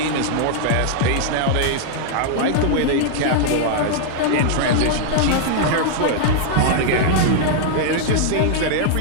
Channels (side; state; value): both; different; correlation -0.01